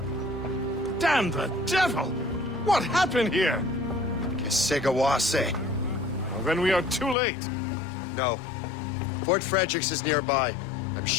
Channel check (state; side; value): drops out; right; at 7.2 s